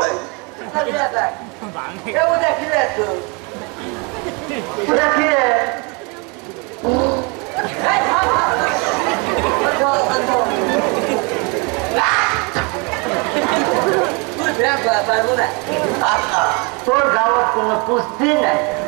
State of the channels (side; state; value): left; quieter; 31.3 dB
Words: তোর গাওয়ার কোনো পুষ্টি নাই